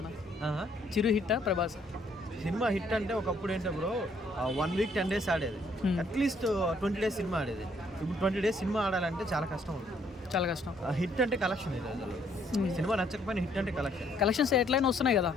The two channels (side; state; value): both; normal; correlation 0.67